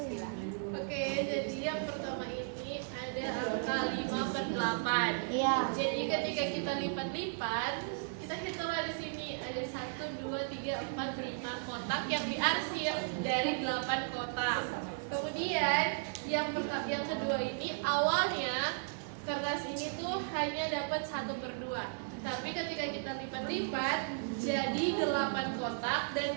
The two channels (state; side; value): silent; left; 54 dB below the other